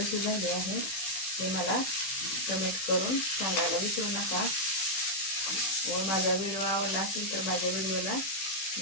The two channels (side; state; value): right; late; 15 ms